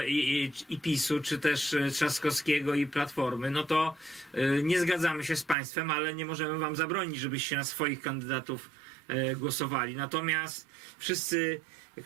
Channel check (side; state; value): left; drops out; at 5.6 s